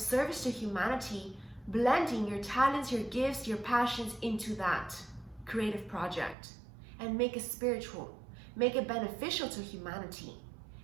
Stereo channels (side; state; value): left; drops out; at 6.4 s